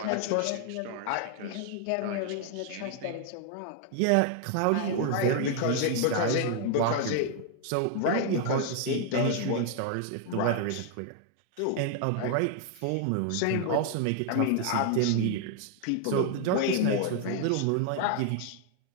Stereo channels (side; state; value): both; different; correlation 0.00